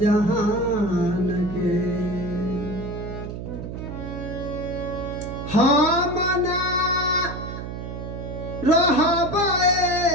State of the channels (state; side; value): noise; right; hum, 8 dB below the sound